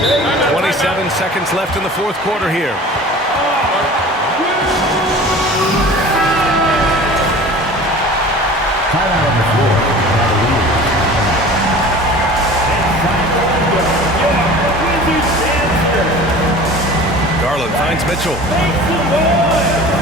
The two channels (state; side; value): normal; both; correlation 0.41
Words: 27 seconds left in the fourth quarter here. Timeout on the floor. Cavaliers. Garland finds Mitchell.